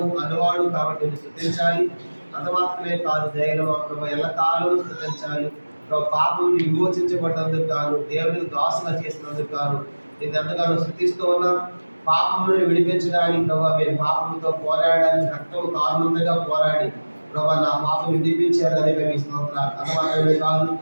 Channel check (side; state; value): both; inverted; correlation -1.00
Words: అన్నవాడు కాబట్టి స్తుతించాలి. అంత మాత్రమే కాదు, దయలో ప్రభు ఎల్లకాలం స్తుతించాలి. ప్రభు పాపం విమోచించబడ్డందుకు గాను, దేవునికి దాసుగా చేసినందుకు గాను నేను ఎంతగానో స్తుతిస్తూ ఉన్నాం. పాపములను విడిపించడానికి ప్రభావ మీరు పాపంతో పోరాడడానికి రక్తం కారణంగా పోరాడి ప్రభావ నా పాపం విడిపించారు అని మేము స్తోత్రాలు. అంత మాత్రమే కాదు,